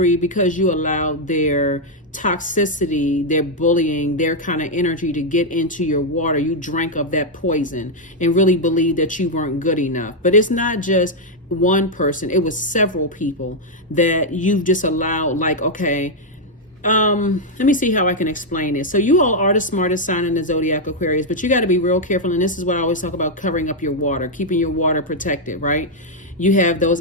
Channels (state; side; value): normal; both; correlation -0.01